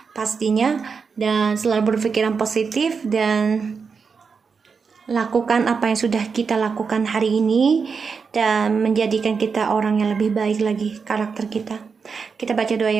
pastinya. Dan selalu berpikiran positif dan lakukan apa yang sudah kita lakukan hari ini dan menjadikan kita orang yang lebih baik lagi karakter kita. Kita baca doa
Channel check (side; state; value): left; quieter; 5.5 dB